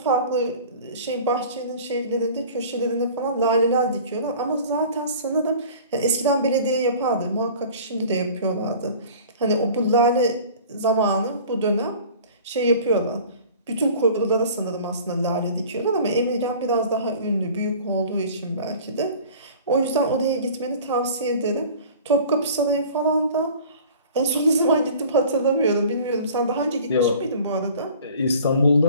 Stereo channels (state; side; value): inverted; both; correlation -0.44